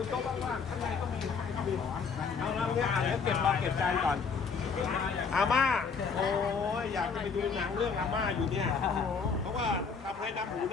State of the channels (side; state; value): right; quieter; 5.5 dB